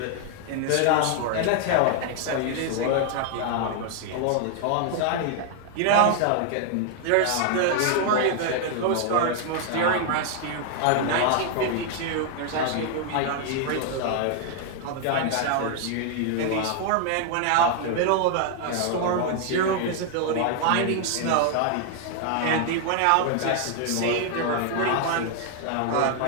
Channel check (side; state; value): both; different; correlation 0.00